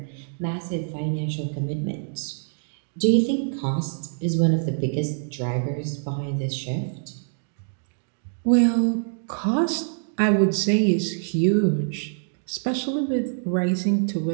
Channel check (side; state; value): left; silent; digital silence